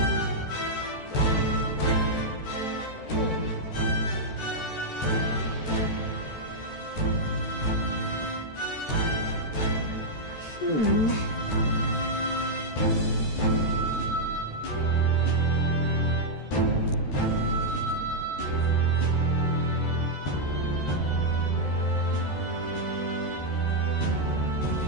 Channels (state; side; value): late; right; 14 ms